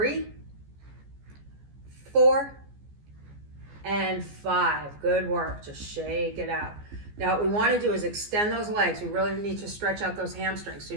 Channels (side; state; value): left; late; 14 ms